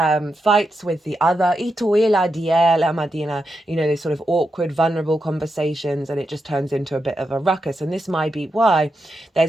fights with the other, these sort of awkward, vulnerable conversations, and it just turns into a bit of a ruckus. And this might be why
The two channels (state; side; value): normal; both; correlation 0.86